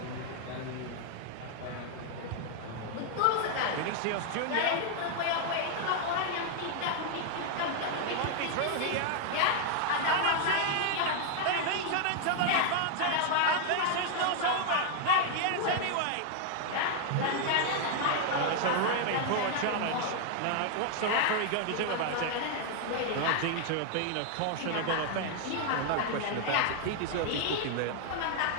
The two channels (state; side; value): different; both; correlation 0.00